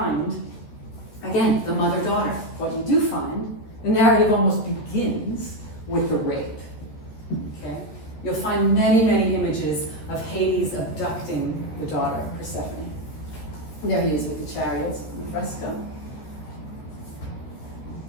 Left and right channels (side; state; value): right; late; 13 ms